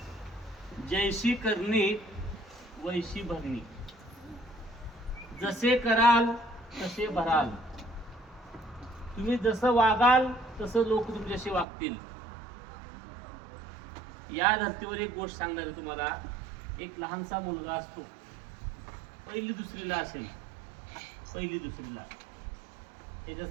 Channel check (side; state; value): left; drops out; at 11.7 s